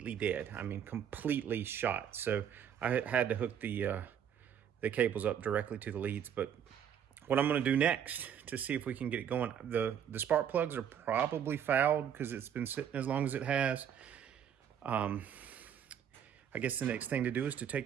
dead. I mean, completely shot. So I had to hook the cables up directly to the leads. But what I'm gonna do next to see if we can get it going, the spark plugs are probably fouled because it's been sitting as long as it has. I guess the next thing to do is to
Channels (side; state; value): left; quieter; 8.8 dB